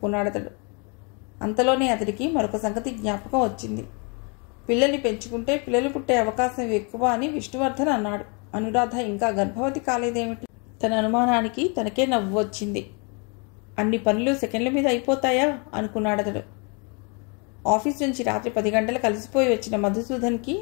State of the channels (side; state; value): right; quieter; 34.1 dB